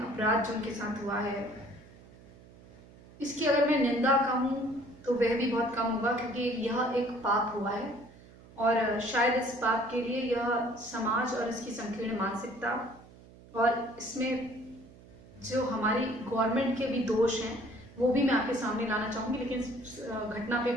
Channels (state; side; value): noise; right; hum, 22 dB below the sound